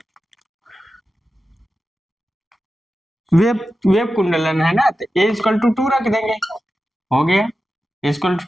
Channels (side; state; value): both; normal; correlation 0.92